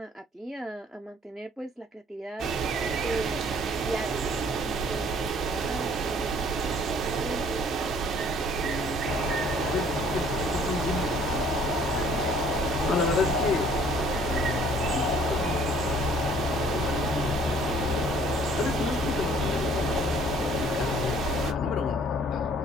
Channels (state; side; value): normal; both; correlation 0.57